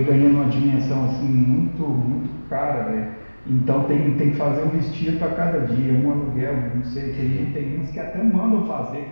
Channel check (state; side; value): inverted; both; correlation -1.00